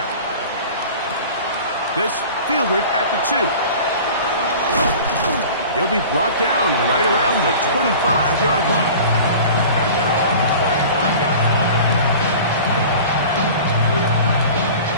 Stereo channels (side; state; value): both; inverted; correlation -0.40